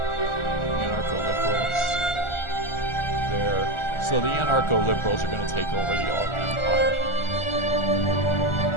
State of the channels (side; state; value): right; late; 1.4 ms